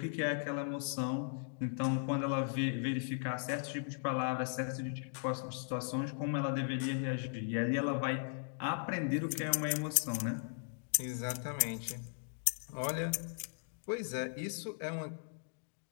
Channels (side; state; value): right; silent; digital silence